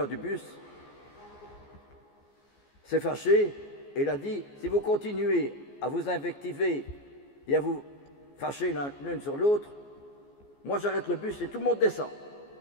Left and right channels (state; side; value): late; right; 14 ms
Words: du bus s'est fâché et il a dit « Si vous continuez à vous invectiver et à vous fâcher l'une sur l'autre, moi j'arrête le bus et tout le monde descend.